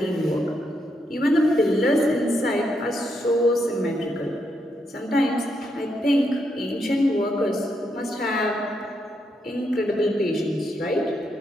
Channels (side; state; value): both; normal; correlation 0.80